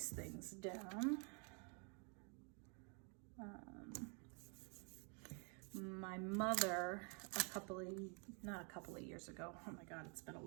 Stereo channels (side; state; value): left; quieter; 37.0 dB